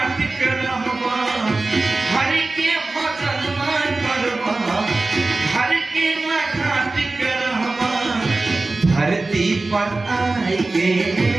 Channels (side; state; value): left; quieter; 3.3 dB